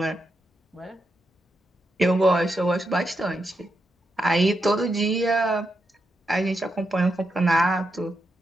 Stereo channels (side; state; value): both; normal; correlation 0.84